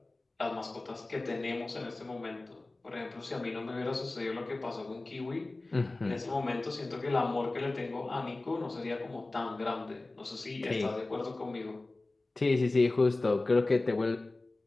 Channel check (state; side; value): quieter; right; 3.1 dB